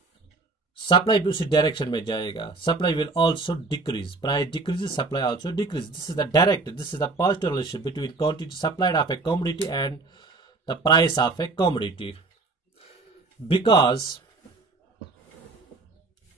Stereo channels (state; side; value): quieter; left; 3.7 dB